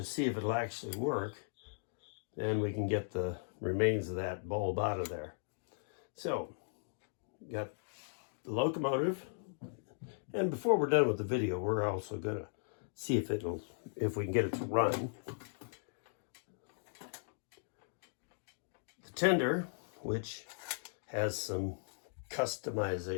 see if it'll actually work, then we can get the remains of that bulb out of there. So, got the locomotive, and before we're done with the video, we're also gonna see if we can get it to run. The tender, which has some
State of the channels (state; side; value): silent; right; digital silence